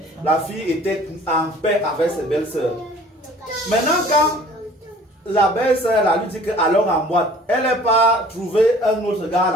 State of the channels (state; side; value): normal; both; correlation 0.50